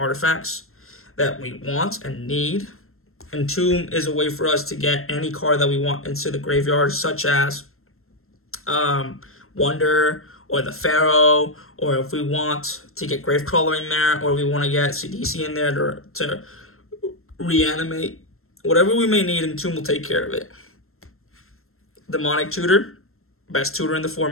that we want and need. Entomb is a way for us to get any card that we want into the graveyard, such as Wonder or the Pharaoh, or if we want to get Gravecrawler in there, or we want to get CDC in there to reanimate. Whatever we may need, Entomb will take care of it. Demonic Tutor, best tutor in the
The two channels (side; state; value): right; late; 0.62 ms